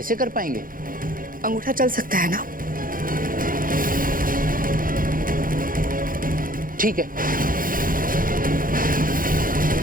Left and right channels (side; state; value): left; late; 0.40 ms